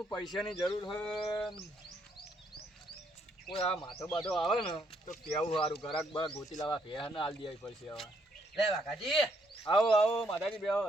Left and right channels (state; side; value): normal; both; correlation 0.71